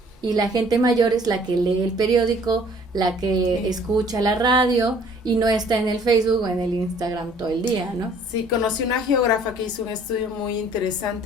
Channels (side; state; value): both; normal; correlation 0.56